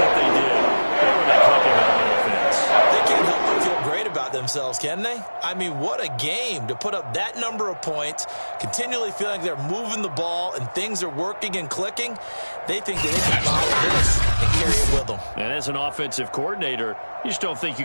they did. They were not clicking on offense. They can't help but feel great about themselves themselves, can they? I mean, what a game to put up that number of points, continually feeling like they're moving the ball and things are working and clicking. They think that they can follow this and carry it with them. And as an offensive coordinator, you just don't think you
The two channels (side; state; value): both; inverted; correlation -1.00